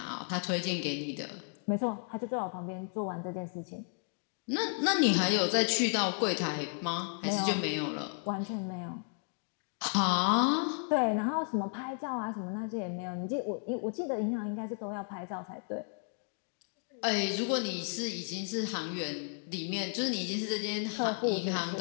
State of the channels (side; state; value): right; silent; 55 dB below the other